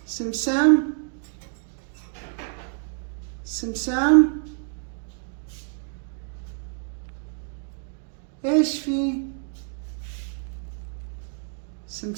سمسام. سمسام. ايش في؟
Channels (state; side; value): silent; left; 55 dB below the other